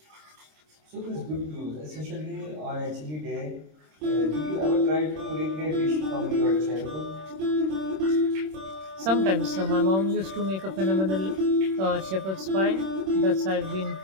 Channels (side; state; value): left; late; 26 ms